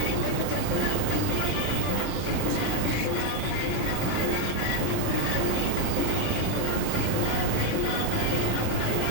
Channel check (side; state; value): both; different; correlation 0.00